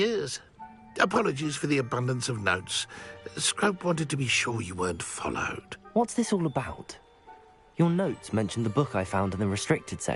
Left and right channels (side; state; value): both; identical; correlation 1.00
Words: Apologies for the abundance of notes. Scrope wanted to be sure you weren't followed. What's this all about? Your notes mentioned the book I found in the restricted